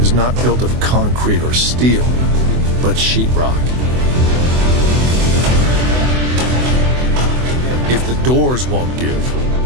not built of concrete or steel, but sheetrock. If the doors won't give,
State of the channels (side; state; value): left; late; 24 ms